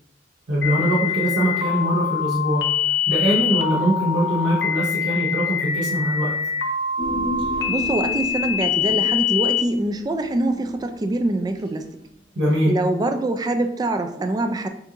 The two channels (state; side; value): normal; both; correlation 0.49